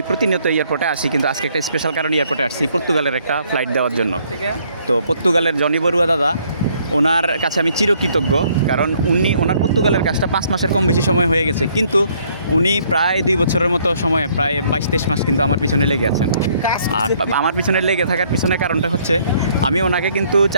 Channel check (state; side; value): inverted; both; correlation -0.65